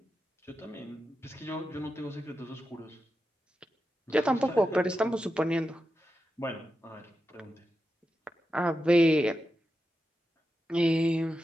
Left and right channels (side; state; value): both; normal; correlation 0.89